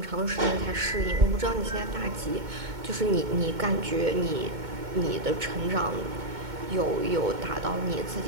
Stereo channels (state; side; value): late; left; 2.2 ms